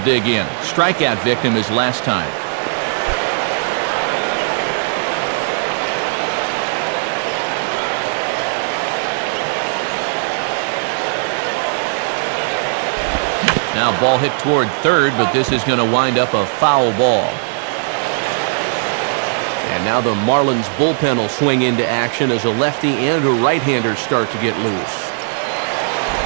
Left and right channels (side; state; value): left; silent; digital silence